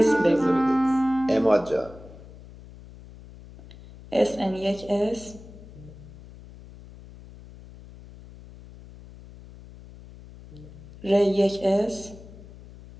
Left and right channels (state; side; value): noise; left; hum, 19 dB below the sound